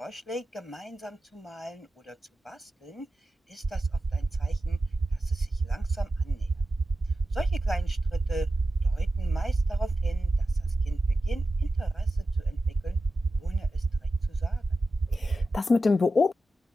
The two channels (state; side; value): normal; both; correlation 0.92